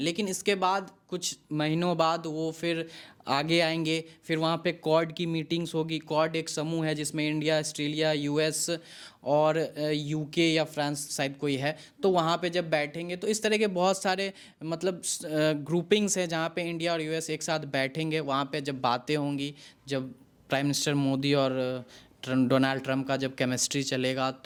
लेकिन इसके बाद कुछ महीनों बाद वो फिर आगे आएंगे, फिर वहाँ पे क्वाड की मीटिंग्स होगी। क्वाड एक समूह है जिसमें इंडिया, ऑस्ट्रेलिया, यूएस और यूके या फ्रांस शायद कोई है। तो वहाँ पे जब बैठेंगे तो इस तरह के बहुत सारे मतलब ग्रुपिंग्स हैं जहाँ पे इंडिया और यूएस एक साथ बैठेंगे। वहाँ पे जब बातें होंगी, जब प्राइम मिनिस्टर मोदी और डोनाल्ड ट्रम्प का जब केमिस्ट्री चलेगा,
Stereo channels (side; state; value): both; identical; correlation 1.00